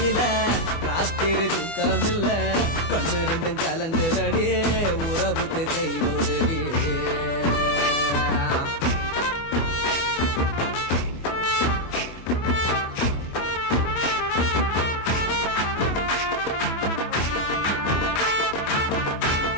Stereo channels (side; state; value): right; late; 24 ms